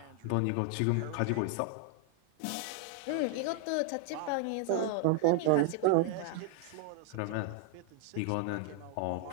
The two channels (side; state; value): both; different; correlation 0.00